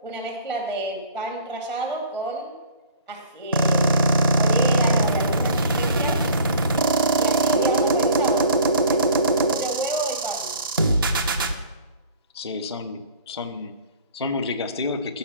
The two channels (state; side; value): inverted; both; correlation -0.47